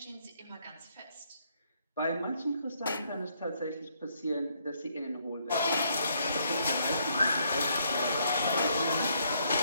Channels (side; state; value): both; inverted; correlation -0.71